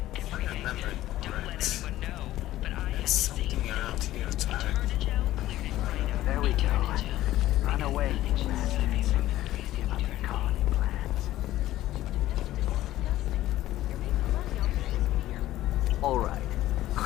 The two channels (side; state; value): right; quieter; 14.8 dB